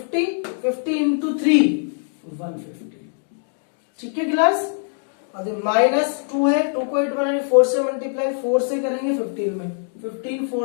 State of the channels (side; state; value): right; silent; 64 dB below the other